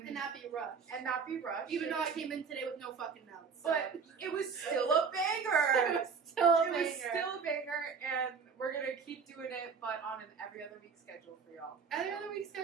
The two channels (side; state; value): left; quieter; 5.7 dB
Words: not be rushed. not be rushed. Even though I came in today with no fucking notes. So. But it was still a banger. it was still a It was banger. still a banger, and we're gonna keep doing it, but on an every other week schedule for y'all. Every other week